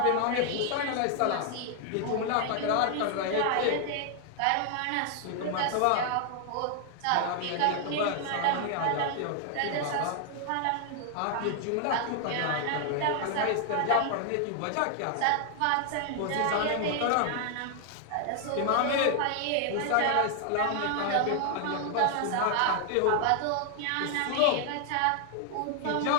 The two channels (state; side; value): different; both; correlation 0.00